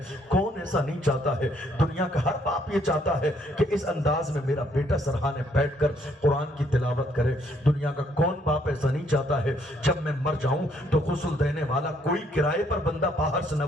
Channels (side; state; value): both; normal; correlation 0.68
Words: کون ایسا نہیں چاہتا ہے؟ دنیا کا ہر باپ یہ چاہتا ہے کہ اس انداز میں میرا بیٹا سرحانے بیٹھ کر قرآن کی تلاوت کرے۔ دنیا کا کون باپ ایسا نہیں چاہتا ہے جب میں مر جاؤں تو غسل دینے والا کوئی کرائے پر بندہ باہر سے نہ